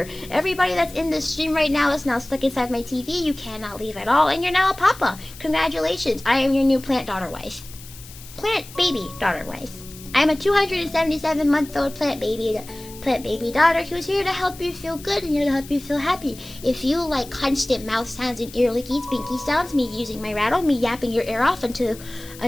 Everybody that's in this stream right now is now stuck inside my TV. You cannot leave at all, and you're now a papa. Congratulations, I am your new plant daughter wife. Plant baby daughter wife. I'm a 277-month-old plant baby daughter who's here to help you feel good and here to help you feel happy. If you like constant mouth sounds and ear lickies, binky sounds, me using my rattle, me yapping your ear off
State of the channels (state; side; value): noise; left; hiss, 18 dB below the sound